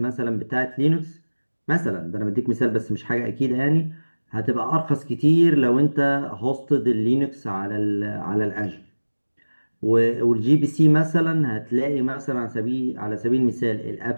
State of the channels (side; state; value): both; inverted; correlation -1.00